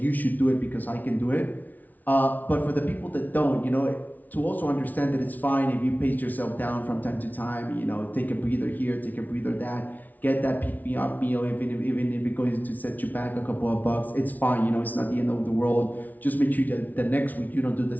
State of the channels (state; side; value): late; right; 0.078 ms